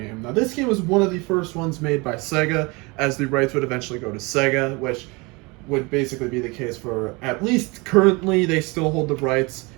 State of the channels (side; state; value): left; quieter; 26.5 dB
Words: Now this game was one of the first ones made by Sega, as the rights would eventually go to Sega, which would basically be the case for, at least currently, they still hold the rights.